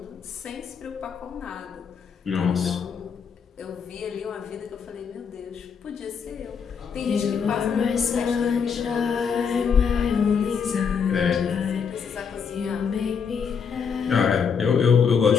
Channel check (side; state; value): right; quieter; 6.5 dB